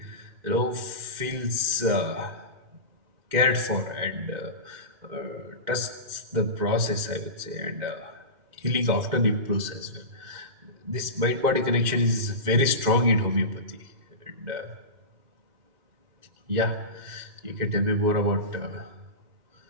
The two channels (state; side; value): late; left; 2.1 ms